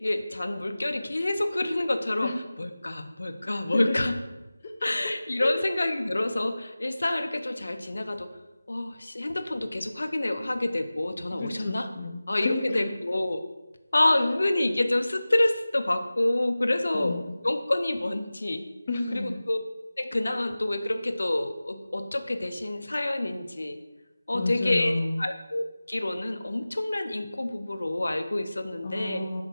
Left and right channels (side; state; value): both; inverted; correlation -0.97